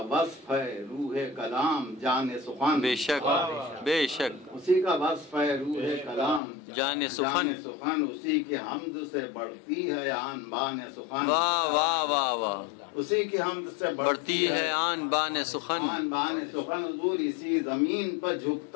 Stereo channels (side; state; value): right; drops out; at 6.4 s